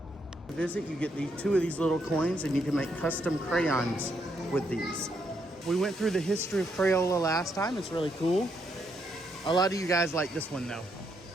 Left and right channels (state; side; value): normal; both; correlation 0.77